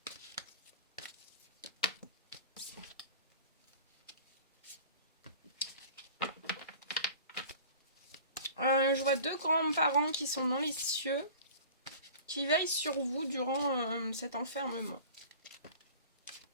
Je vois deux grands-parents qui sont dans les cieux, qui veillent sur vous durant cet enfermement.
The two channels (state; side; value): inverted; both; correlation -0.41